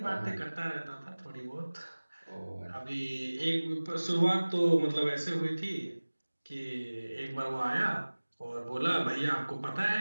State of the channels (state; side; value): inverted; both; correlation -1.00